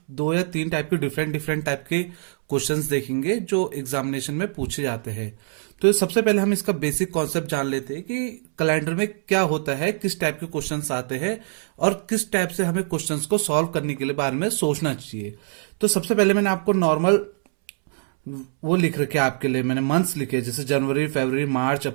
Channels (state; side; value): silent; left; 63 dB below the other